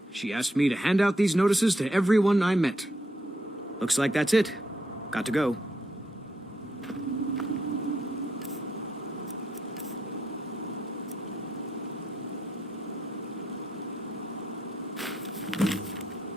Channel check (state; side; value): normal; both; correlation 0.78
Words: She asked me to hand out these notices to everyone I met. Looks like that's it. Got to go.